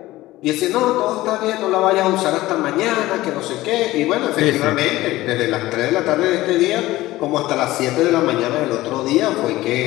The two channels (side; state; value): right; quieter; 17.3 dB